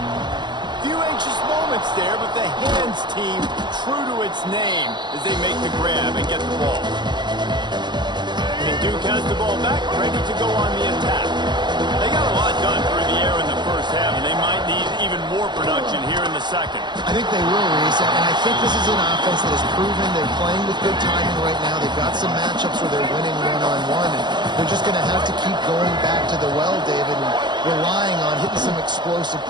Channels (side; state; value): left; late; 0.21 ms